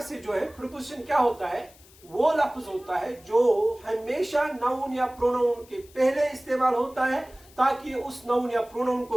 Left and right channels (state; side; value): noise; left; hiss, 25 dB below the sound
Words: से जो है प्रीपोजिशन क्या होता है? वो लफ्ज होता है जो हमेशा नाउन या प्रोनाउन के पहले इस्तेमाल होता है, ताकि उस नाउन या प्रोनाउन